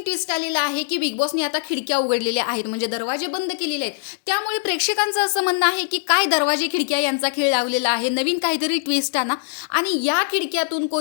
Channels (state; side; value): silent; right; digital silence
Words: ट्विस्ट आलेला आहे की बिग बॉसनी आता खिडक्या उघडलेल्या आहेत, म्हणजे दरवाजे बंद केलेले आहेत. त्यामुळे प्रेक्षकांचं असं म्हणणं आहे की काय दरवाजे खिडक्या यांचा खेळ लावलेला आहे, नवीन काहीतरी ट्विस्ट आणा आणि या खिडक्यातून